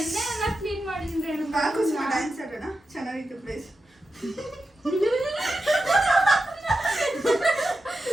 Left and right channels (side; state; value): both; normal; correlation 0.90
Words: ಎಲ್ಲ ಕ್ಲೀನ್ ಮಾಡಿದ್ದೀನಿ ರೇಣುಕಾ. ಡ್ಯಾನ್ಸ್ ಆಡೋಣ, ಚೆನ್ನಾಗಿತ್ತು place.